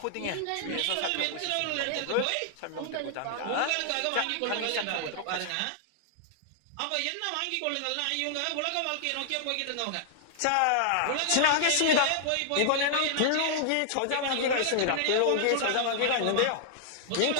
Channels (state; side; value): different; both; correlation -0.01